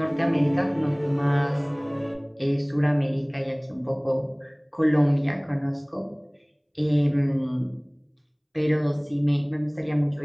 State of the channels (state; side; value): identical; both; correlation 1.00